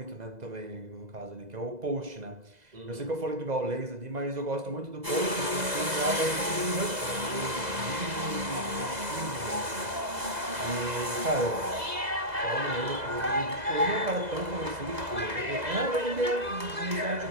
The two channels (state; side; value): late; left; 2.0 ms